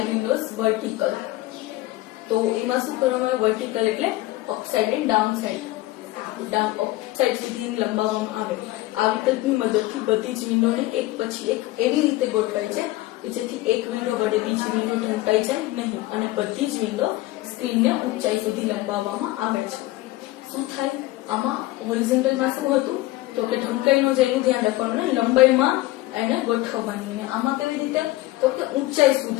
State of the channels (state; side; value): quieter; right; 18.0 dB